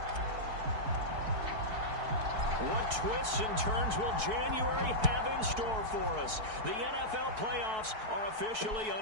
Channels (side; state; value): left; late; 4.6 ms